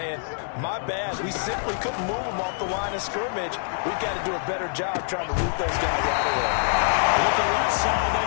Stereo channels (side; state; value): right; silent; 62 dB below the other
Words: my bad, we simply couldn't move them off the line of scrimmage. We've got to do a better job trying to root those guys out of there. With the left side,